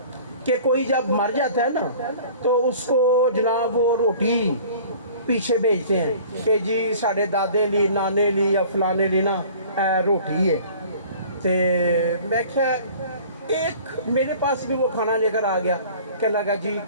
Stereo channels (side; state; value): both; inverted; correlation -0.47